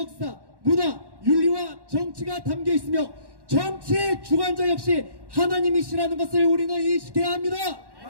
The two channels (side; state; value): left; late; 1.1 ms